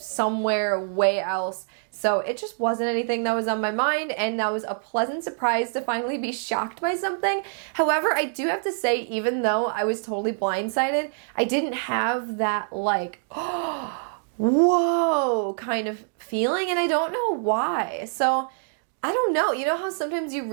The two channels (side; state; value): left; silent; digital silence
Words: way else, so it just wasn't anything that was on my mind, and that was a pleasant surprise to finally be shocked by something. However, I do have to say, even though I was totally blindsided, I didn't have that like, whoa kind of feeling, and I don't know why. So I don't know. You know how sometimes you